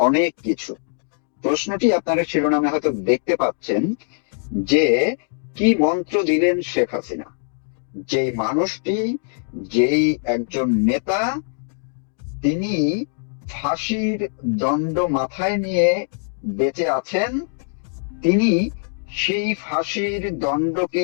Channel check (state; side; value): silent; right; digital silence